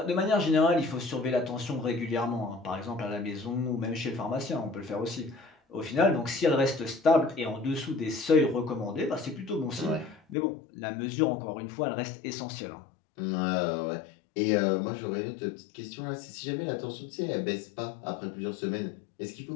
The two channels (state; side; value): drops out; right; at 10.4 s